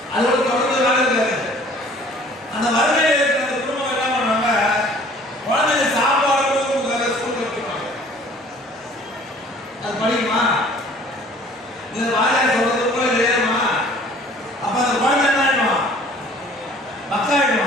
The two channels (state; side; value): normal; both; correlation 0.52